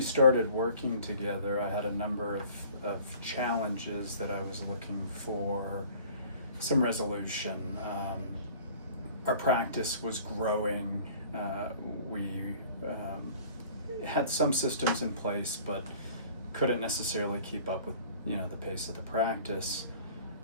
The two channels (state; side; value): inverted; both; correlation -0.49